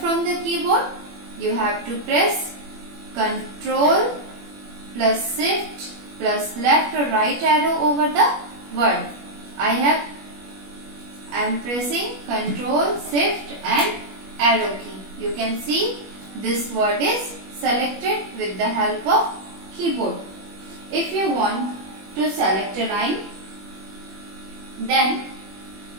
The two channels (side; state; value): left; late; 21 ms